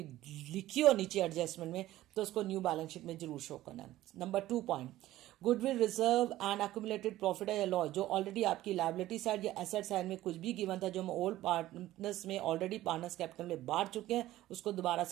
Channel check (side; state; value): left; quieter; 15.1 dB